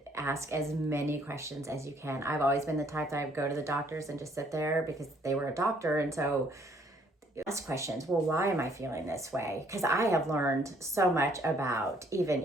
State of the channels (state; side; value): normal; both; correlation 0.64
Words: ask as many questions as you can. I've always been the type that I would go to the doctors and just sit there because they were a doctor. And so ask questions. Well, why am I feeling this way? Because I have learned so much about even,